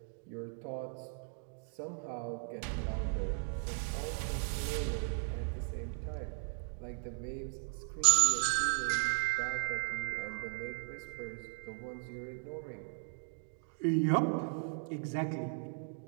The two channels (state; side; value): silent; left; 53 dB below the other